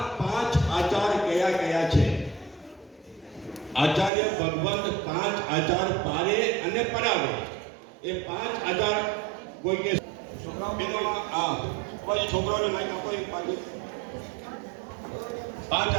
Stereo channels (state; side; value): drops out; left; at 4.1 s